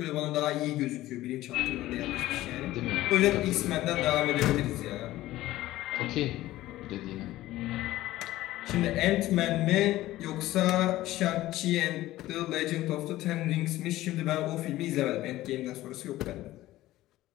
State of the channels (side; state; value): right; quieter; 16.0 dB